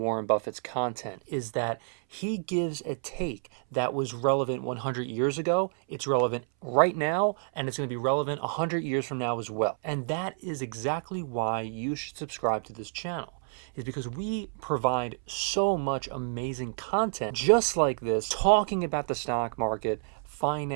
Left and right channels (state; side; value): silent; left; 58 dB below the other